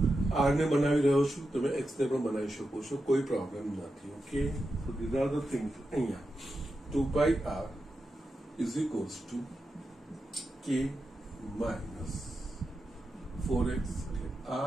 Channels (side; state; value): both; normal; correlation 0.89